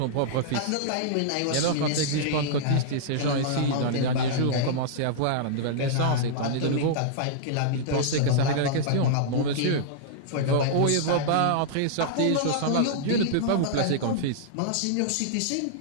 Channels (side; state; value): both; different; correlation -0.02